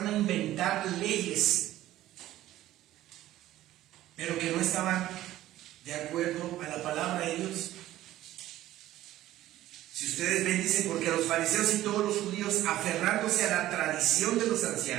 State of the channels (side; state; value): left; quieter; 14.5 dB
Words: a inventar leyes, pero que no estaban de acuerdo a la palabra de Dios. Si ustedes ven, dice, porque los fariseos y todos los judíos, aferrándose a la tradición de los